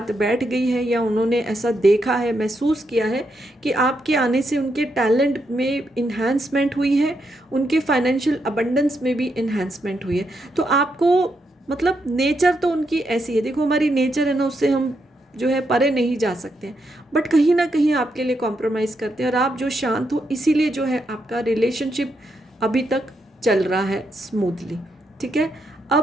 बैठ गई है, या उन्होंने ऐसा देखा है, महसूस किया है कि आपके आने से उनके टैलेंट में इन्हांसमेंट हुई है, उनके फाइनेंशियल अबंडेंस में भी इन्हांसमेंट हुई है। तो आपको मतलब नेचर तो उनकी ऐसी है, देखो हमारी नेचर है ना, उससे हम जो है परे नहीं जा सकते हैं। बट कहीं ना कहीं आपके लिए कॉम्प्रोमाइज़ करते हैं, और आप जो शांत हो, इसीलिए जो है आपका रिलेशनशिप अभी तक चल रहा है स्मूथली। ठीक है।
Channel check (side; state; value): both; normal; correlation 0.80